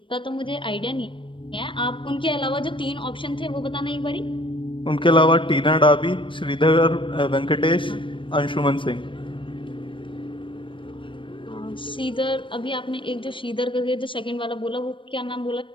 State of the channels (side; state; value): right; late; 0.25 ms